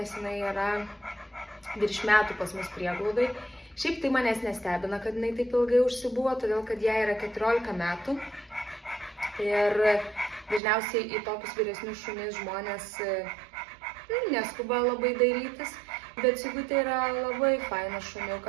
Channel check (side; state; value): left; drops out; at 10.6 s